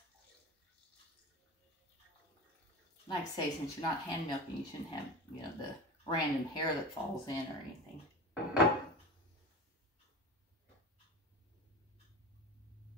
Like I say, since you're not hand milking, you shouldn't have, you know, the random hair that falls in or anything.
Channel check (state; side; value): normal; both; correlation 0.30